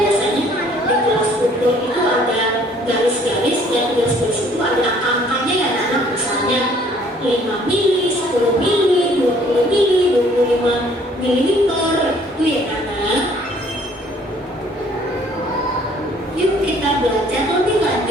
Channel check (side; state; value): both; normal; correlation 0.59